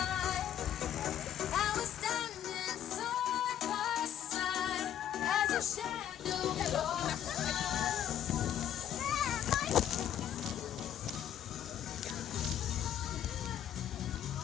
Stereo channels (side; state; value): right; quieter; 10.5 dB